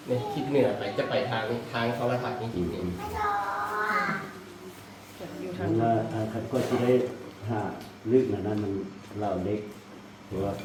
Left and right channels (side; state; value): both; identical; correlation 1.00